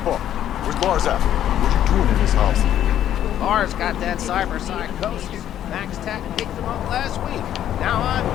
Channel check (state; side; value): quieter; right; 11.1 dB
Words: where's Lars at? What you doing in this house? Lars got that cyber psychosis. Max Tech picked him up last week. Now I'm...